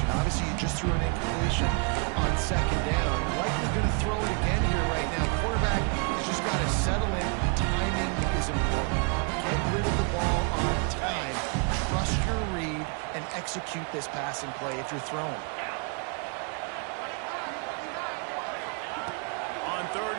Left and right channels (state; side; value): quieter; left; 36.2 dB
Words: Obviously, you just threw an incompletion on 2nd down. Likely going to throw it again here right now. Quarterback has just got to settle in. Timing is important. Get rid of the ball on time. Trust your read and execute this passing play if you're throwing. On